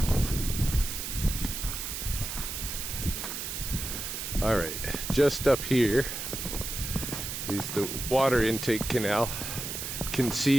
All right, just up here is the water intake canal. You can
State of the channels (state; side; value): noise; right; hiss, 5 dB below the sound